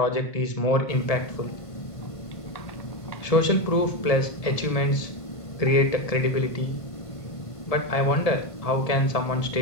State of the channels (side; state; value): right; late; 1.5 ms